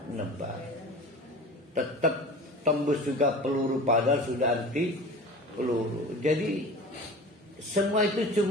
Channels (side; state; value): both; normal; correlation 0.37